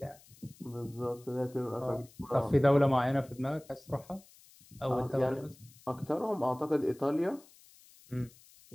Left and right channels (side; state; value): left; noise; hiss, 25 dB below the sound